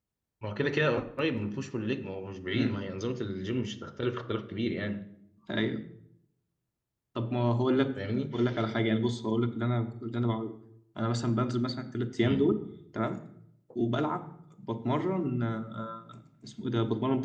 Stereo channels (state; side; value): identical; both; correlation 1.00